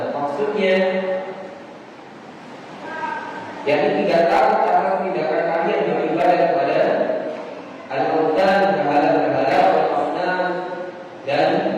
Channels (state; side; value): identical; both; correlation 1.00